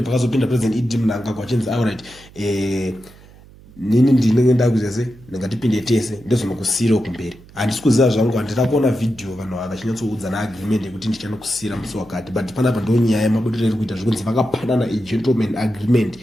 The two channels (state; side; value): noise; right; hum, 23 dB below the sound